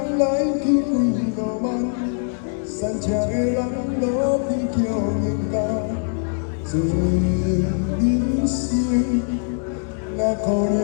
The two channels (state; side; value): silent; right; 64 dB below the other